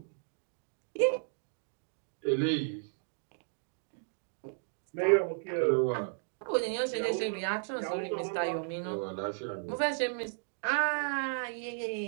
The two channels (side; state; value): left; silent; digital silence